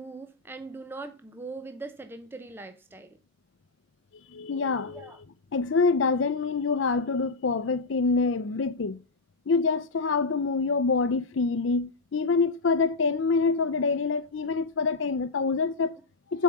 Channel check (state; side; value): quieter; right; 3.9 dB